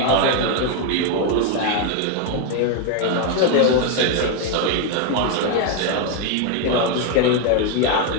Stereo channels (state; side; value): different; both; correlation 0.01